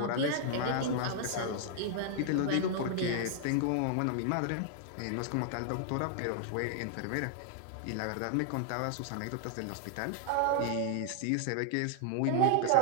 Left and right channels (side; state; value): both; different; correlation 0.00